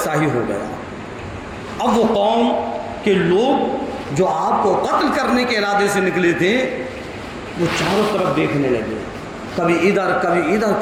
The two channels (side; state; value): both; identical; correlation 1.00